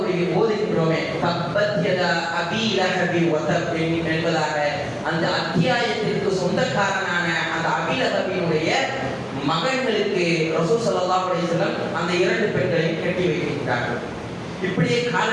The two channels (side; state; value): both; identical; correlation 1.00